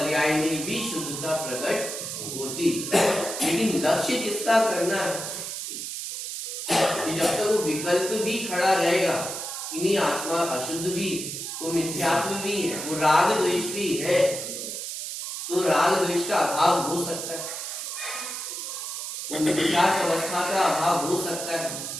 में भी शुद्धता प्रकट होती। लेकिन लक्ष्य किसका करना है कि जब तक वो विकल्प भी खड़ा रहेगा, इन्हीं आत्मा अशुद्ध भी, वो मिथ्यात्व भी है, वो राग द्वेष भी है, तो राग द्वेष का अभाव हो सकता है, वो मिथ्यात्व अवस्था का अभाव हो सकता है।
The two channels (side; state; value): right; noise; hiss, 6 dB below the sound